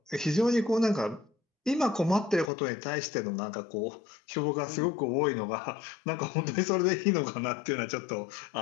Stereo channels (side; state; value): right; drops out; at 2.5 s